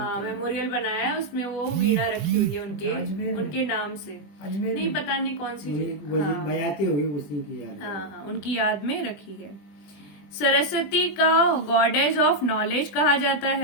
मेमोरियल बनाया है, उसमें वो वीणा रखी हुई है अजमेर में। उनके नाम से। अजमेर नहीं में। पता नहीं कौन सी हाँ। बजाती होगी उसी की याद में। हाँ, उनकी याद में रखी है। सरस्वती का गॉडेज ऑफ नॉलेज कहा जाता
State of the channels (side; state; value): right; late; 20 ms